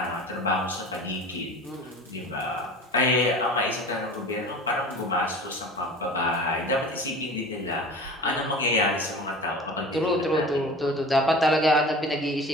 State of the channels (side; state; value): both; normal; correlation 0.38